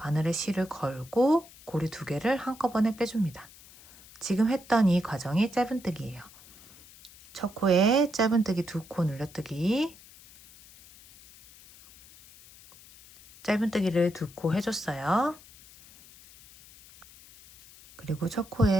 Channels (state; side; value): noise; left; hiss, 22 dB below the sound